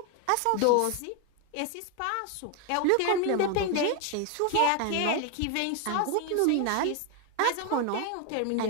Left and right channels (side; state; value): both; different; correlation 0.01